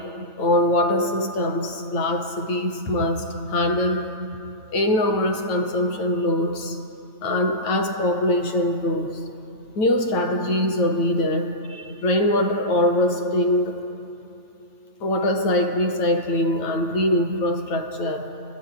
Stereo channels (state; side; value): late; right; 9.1 ms